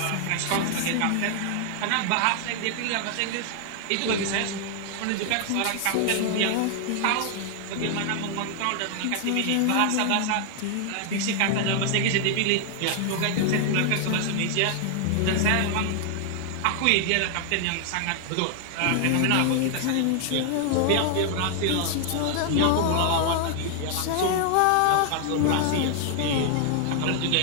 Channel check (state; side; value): different; both; correlation 0.00